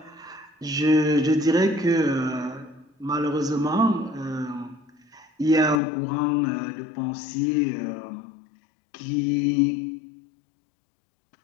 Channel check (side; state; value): right; drops out; at 5.8 s